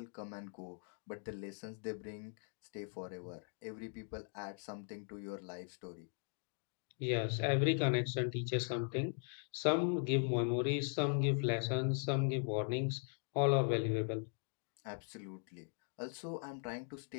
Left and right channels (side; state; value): right; silent; 51 dB below the other